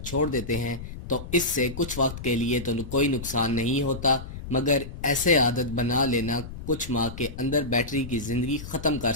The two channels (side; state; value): left; noise; rumble, 11 dB below the sound